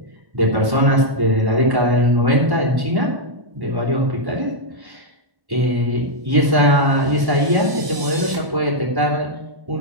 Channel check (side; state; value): left; late; 1.1 ms